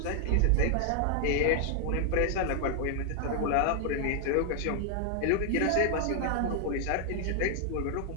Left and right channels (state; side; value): different; both; correlation 0.00